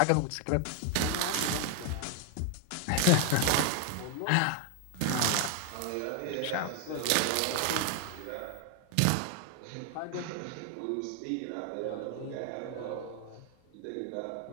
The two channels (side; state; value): both; different; correlation 0.01